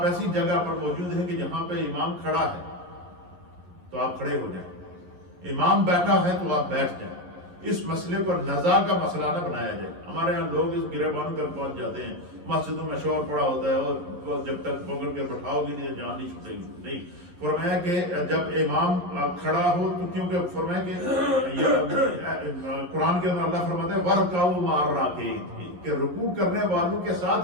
ایسی جگہ پر موجود ہیں کہ جہاں پہ امام کھڑا ہے تو آپ کھڑے ہو جائیں، امام بیٹھا ہے تو آپ بیٹھ جائیں۔ اس مسئلے کو نزاع کا مسئلہ نہ بنایا جائے۔ ہمارے یہاں لوگ اس گریبان کر پہنچ جاتے ہیں، مسجدوں میں شور پڑا ہوتا ہے اور جب تک پکڑ کے بٹھاؤ گے نہیں جان نہیں چھوٹے گی۔ نہیں، فرمایا کہ جب امام کھڑا ہو تو کیونکہ فرمایا کہ قرآن کے اندر اللہ فرماتا ہے وَرْكَعُوا مَعَ الرَّاكِعِينَ، کہ رکوع کرنے والوں کے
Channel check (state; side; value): late; left; 11 ms